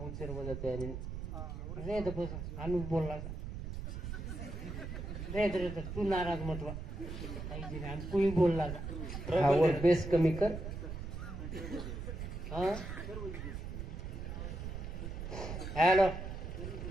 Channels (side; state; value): right; noise; rumble, 6 dB below the sound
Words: उचर वजत आहे रे द बस अनु बोलला रे तू नाराज मतवा काही दिने आणि कोणी बोलला हा वो बेस कमी कर हा हॅलो